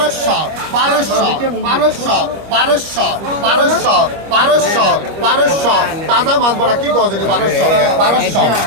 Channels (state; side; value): late; left; 25 ms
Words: 1200 1200 1200 1200 1200 তাজা মাছ বড়া কি গজ 1200 1200